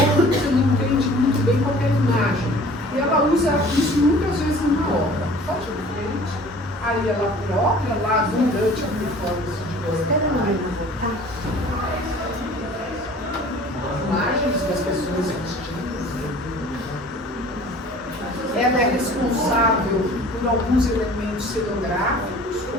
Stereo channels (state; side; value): normal; both; correlation 0.48